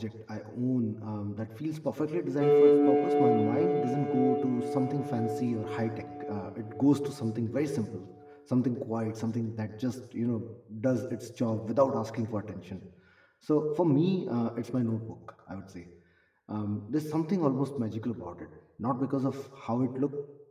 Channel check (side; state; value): both; identical; correlation 1.00